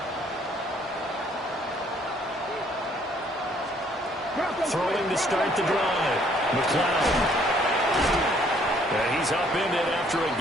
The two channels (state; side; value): normal; both; correlation 0.63